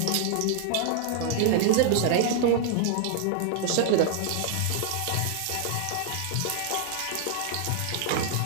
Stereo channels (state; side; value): different; both; correlation 0.00